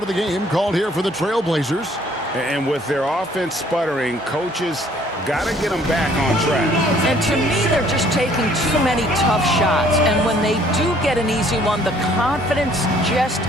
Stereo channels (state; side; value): normal; both; correlation 0.60